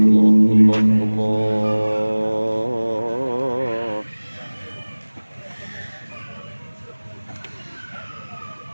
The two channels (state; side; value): inverted; both; correlation -1.00